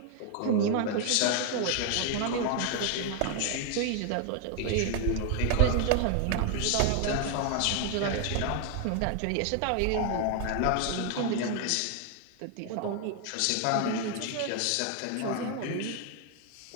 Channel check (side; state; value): both; different; correlation 0.00